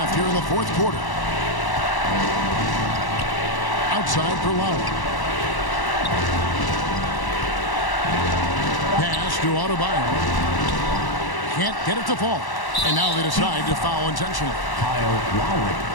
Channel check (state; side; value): late; right; 1.0 ms